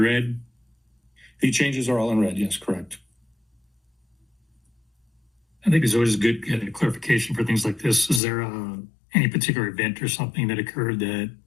The changes are all in red, yes, correct. I think it's always good to get a clarification for things like this. Is there any particular event or something that occurred that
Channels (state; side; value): drops out; right; at 8.2 s